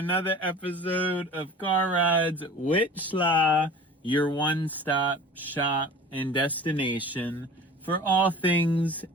episode of Car Rides with Sly, your one-stop shop and destination for all things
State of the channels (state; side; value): normal; both; correlation 0.41